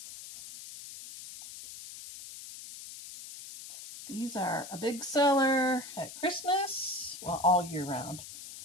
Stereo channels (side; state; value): left; noise; hiss, 13 dB below the sound